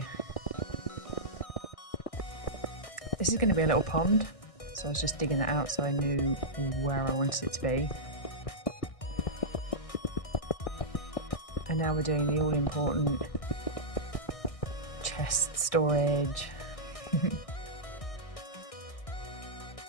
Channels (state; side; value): late; right; 1.6 ms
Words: This is going to be a little pond, so I was just digging that out so I knew where I wanted it to be. And now we're doing the all-important chest storage.